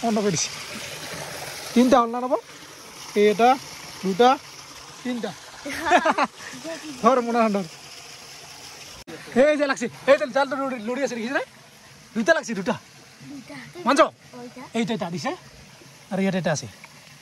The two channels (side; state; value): both; identical; correlation 1.00